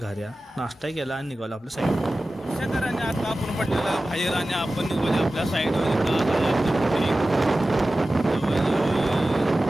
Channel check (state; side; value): normal; both; correlation 0.95